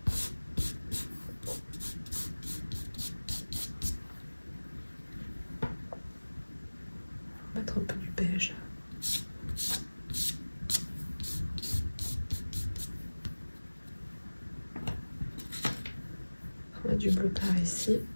Mettre un peu du beige. On met du bleu par ici.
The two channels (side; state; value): both; inverted; correlation -1.00